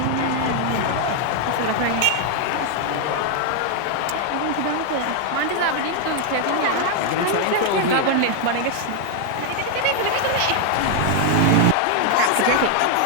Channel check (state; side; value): different; both; correlation 0.00